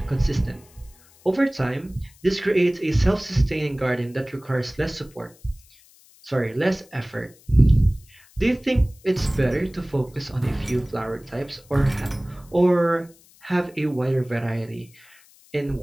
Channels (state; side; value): noise; left; hiss, 27 dB below the sound